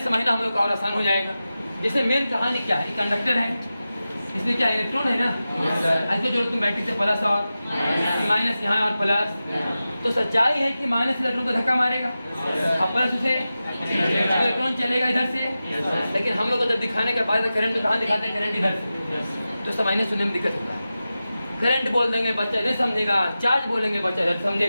समझना हम लोग का और आसान हो जाएगा। जैसे मेन कहानी क्या है, कंडक्टर है, इसमें क्या इलेक्ट्रॉन है ना, ऐसे जो तुम बैटरी से प्लस और माइनस यहाँ और प्लस, तो सच्चाई है कि माइनस इलेक्ट्रॉन को धक्का मारेगा और प्लस उसे इलेक्ट्रॉन चलेगा इधर से। लेकिन हम लोग को जब दिखाने के बाद करंट तो कहाँ दिखाते हैं, करंट इधर से, तो समझने सुनने में दिक्कत होता है। करंट बोल देंगे बच्चा इधर समझेगा, चार्ज बोलेंगे बच्चा इधर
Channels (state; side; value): inverted; both; correlation -0.94